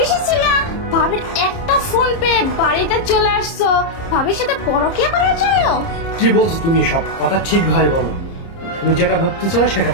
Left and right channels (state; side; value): late; right; 30 ms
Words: ছিল, ভাবির একটা ফোন পেয়ে বাড়িতে চলে আসছো ভাবির সাথে পরকীয়া করার জন্য। কি বলছো তুমি? সব কথা ঠিকভাবে বলো। তুমি যেটা ভাবতেছো না সেটা